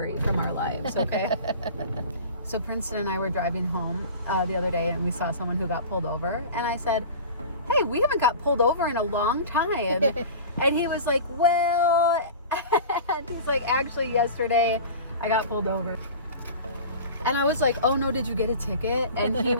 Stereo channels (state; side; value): inverted; both; correlation -0.36